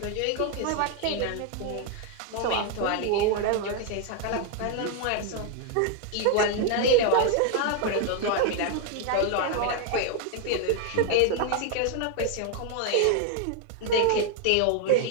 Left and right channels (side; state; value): both; different; correlation 0.01